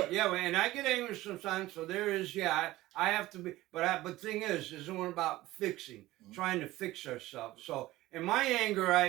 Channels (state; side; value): quieter; left; 17.2 dB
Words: Yeah, and I get angry sometimes. So there is, I have to be. But the thing is one about fixing, trying to fix ourselves. So in my anger,